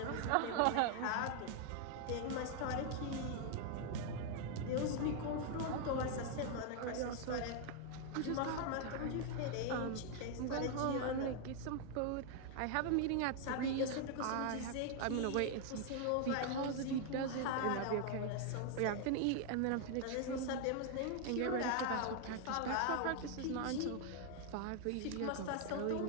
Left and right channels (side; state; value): both; different; correlation 0.00